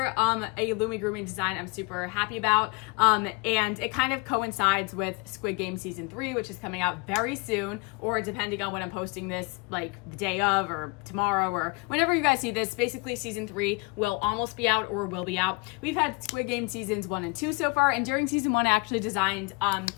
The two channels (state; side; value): quieter; right; 28.5 dB